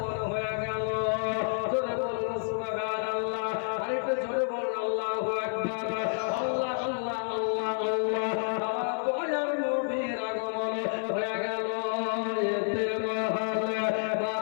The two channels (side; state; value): right; silent; 58 dB below the other